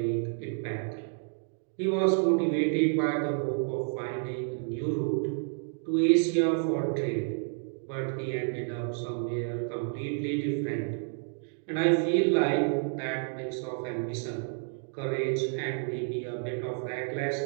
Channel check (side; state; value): left; silent; 58 dB below the other